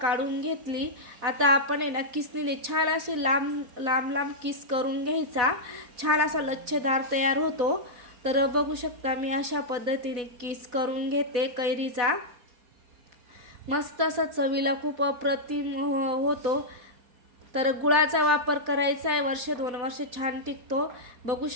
काढून घेतली। आता आपण आहे ना किसनीने छान असे लांब लांब लांब किस करून घ्यायचा, छान असा लच्छेदार तयार होतो। तर बघू शकता मी अशा पद्धतीने किस करून घेते कैरीचा। मस्त असा चवीला खूप अप्रतिम होतो। तर गुळाचा वापर करायचा आहे, वर्ष 2 वर्ष छान टिकतो। बघू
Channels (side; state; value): left; late; 4.1 ms